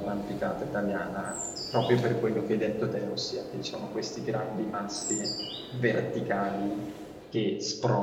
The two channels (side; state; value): both; identical; correlation 1.00